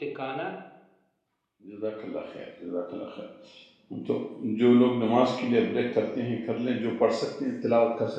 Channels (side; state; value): both; identical; correlation 1.00